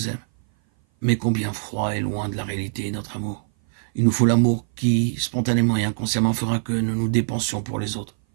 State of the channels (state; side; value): silent; left; 58 dB below the other